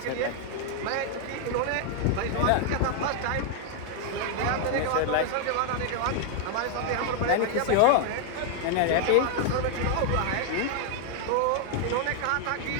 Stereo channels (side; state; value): both; different; correlation 0.00